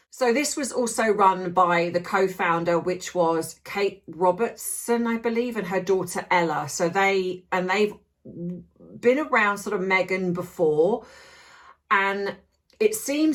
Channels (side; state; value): both; identical; correlation 1.00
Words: So this was also run by the co-founder, which was Kate Robertson, I believe, and her daughter Ella. So they've been around sort of Meghan before. And it